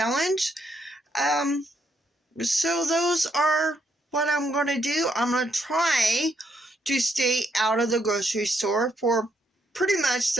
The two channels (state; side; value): normal; both; correlation 0.75